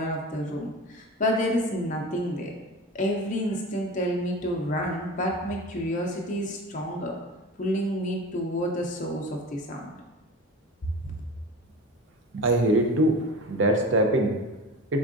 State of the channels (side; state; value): both; normal; correlation 0.33